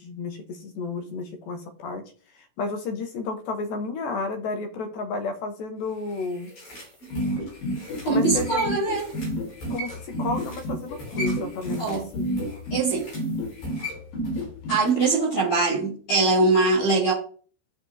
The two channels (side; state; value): right; late; 14 ms